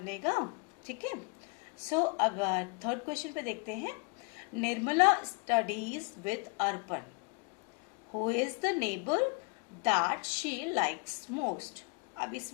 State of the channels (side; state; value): right; quieter; 32.0 dB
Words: ठीक है। सो अब थर्ड क्वेश्चन पे देखते हैं। Nirmala studies with Arpan, Who is the neighbor that she likes most? अब